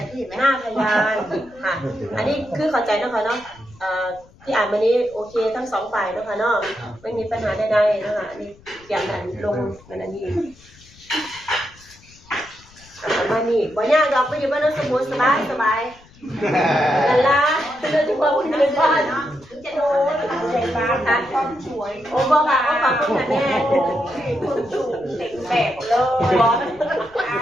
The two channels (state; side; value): noise; left; rumble, 26 dB below the sound